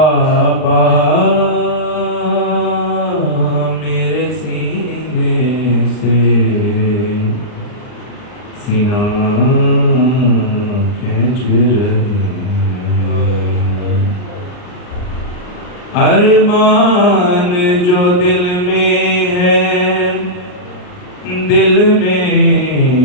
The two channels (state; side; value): late; right; 39 ms